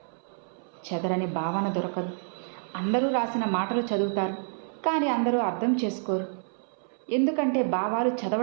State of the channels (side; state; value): left; silent; 59 dB below the other